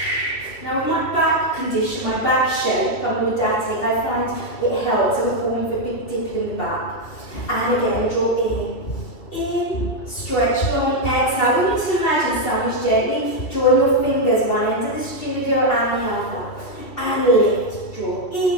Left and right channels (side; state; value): right; late; 2.8 ms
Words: Now with my back condition, my back shape, I'm lordotic, I find it helps. I'm falling for a big dip in the back. And again, draw in, stretch long, exhale. You need to imagine sandwich gently, drawing your fingers one end of the studio and the other. And lift, draw